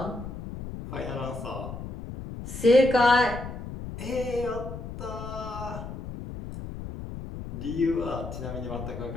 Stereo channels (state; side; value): noise; left; rumble, 9 dB below the sound